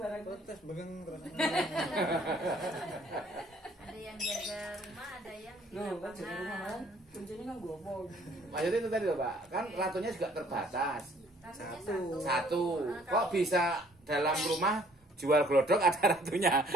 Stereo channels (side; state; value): both; normal; correlation 0.60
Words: Protes begeng terus. Ada yang jaga rumah, ada yang di Loh, kan jaga rumah kan? lapangan. Kuncinya kan gopo. Maksudnya itu tadi loh Pak, kan ratunya juga terbatas. Ratunya Satu. Nah, Kok kalau- bisa dalam rumah jual glodok ada ratunya,